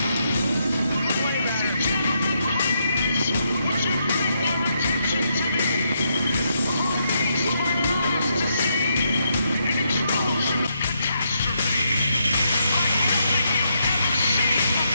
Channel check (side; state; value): both; inverted; correlation -0.79